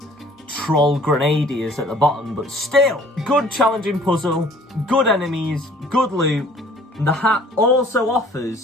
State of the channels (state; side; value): normal; both; correlation 0.53